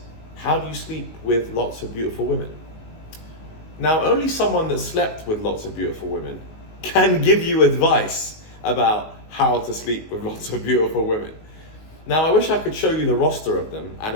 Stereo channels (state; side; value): late; right; 19 ms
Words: how do you sleep with lots of beautiful women? Now, only someone that slept with lots of beautiful women can give you advice about how to sleep with lots of beautiful women. Now, I wish I could show you the roster of them and